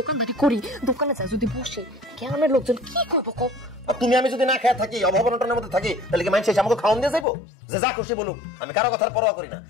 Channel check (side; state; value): right; drops out; at 7.2 s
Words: দোকানদারি করি, দোকানে যাই যদি বসি, গ্রামের লোকজন কি করবো কও? আর তুমি আমি যদি না খেয়ে থাকি, অভাবনটার মধ্যে থাকি, তাহলে কি মানুষ এসে আমাকে খাওয়ান দিয়ে যাইবো? যে যা খুশি বলুক, আমি কারো কথার পরোয়া করি না।